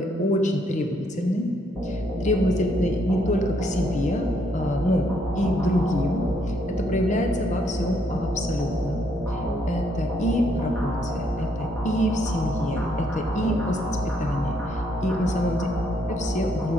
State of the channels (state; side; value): normal; both; correlation 0.71